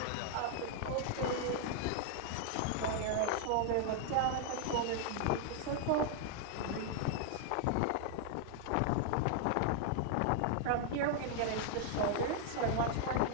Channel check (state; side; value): different; both; correlation 0.00